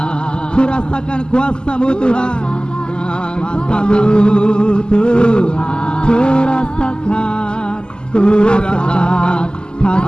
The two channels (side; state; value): right; late; 0.047 ms